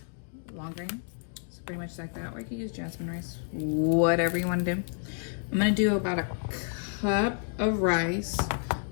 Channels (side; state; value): right; silent; 58 dB below the other